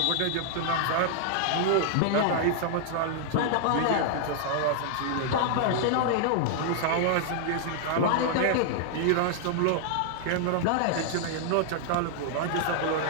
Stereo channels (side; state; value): both; different; correlation -0.01